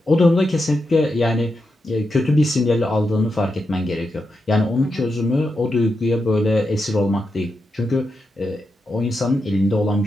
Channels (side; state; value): both; normal; correlation 0.86